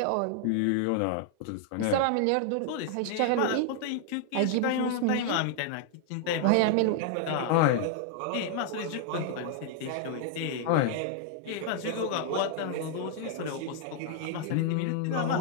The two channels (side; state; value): both; different; correlation 0.00